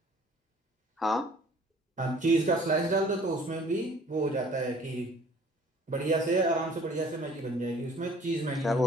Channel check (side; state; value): both; normal; correlation 0.53